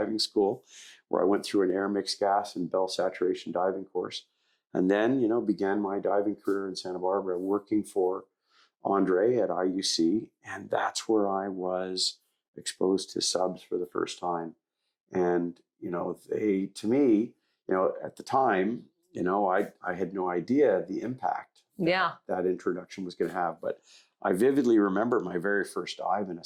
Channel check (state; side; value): identical; both; correlation 1.00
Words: school where I went through an air mixed gas and bell saturation diving course. And then, began my diving career in Santa Barbara, working for Andre at IUC. And that's where I was exposed to subs for the first time. And, they, to me, at the time, I had no idea the impact that introduction was going to have. But I vividly remember my very first dive in a